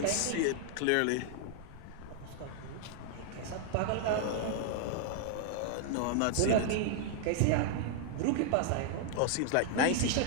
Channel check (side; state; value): both; different; correlation 0.00